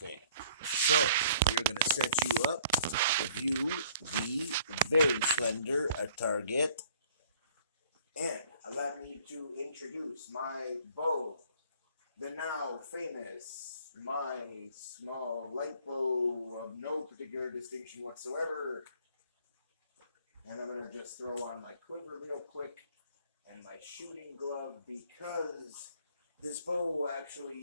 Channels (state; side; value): inverted; both; correlation -0.57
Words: So, we're going to set you up to view the very slender target. And allow me to introduce my bow, the now famous, my small light bow of no particular distinction whatsoever. And I'm going to just throw on my quiver real quick and my shooting glove because this bow